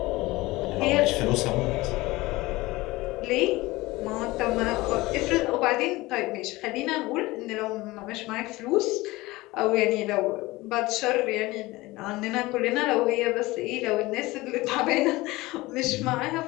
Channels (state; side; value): quieter; right; 20.3 dB